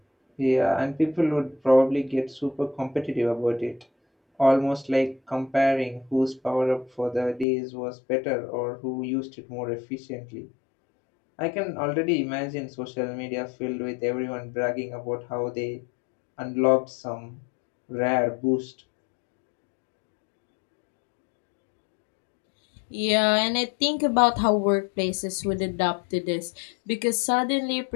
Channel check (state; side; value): drops out; right; at 7.5 s